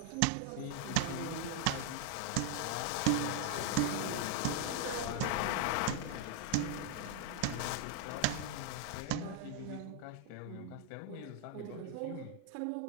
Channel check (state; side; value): different; both; correlation 0.00